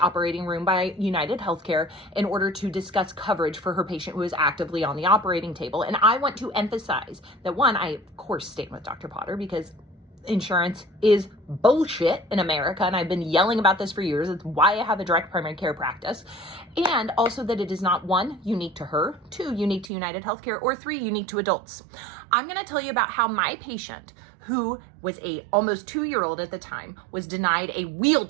room by United Healthcare in order to discuss coverage for her patient who is actively on the operating table. And I want to emphasize that, one, I of course stand with Dr. Potter because insurance is bullshit in America, and I've been yelling about this for years. It's why I have a direct primary care practice. And also that it is not, one, unique to her, two, unique to United Healthcare, or three, unique to adults. I'm going to tell you about how my patient, who was a almost 2-year-old at the time, was denied a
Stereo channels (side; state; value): left; drops out; at 19.9 s